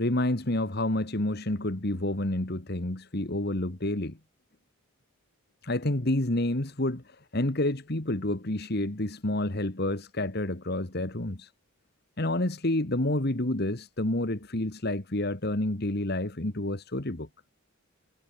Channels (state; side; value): normal; both; correlation 0.47